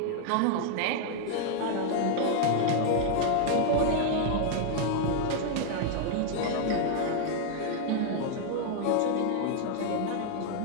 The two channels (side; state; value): both; different; correlation 0.00